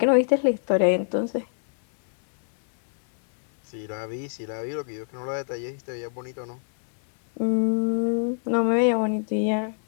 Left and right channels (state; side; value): silent; right; digital silence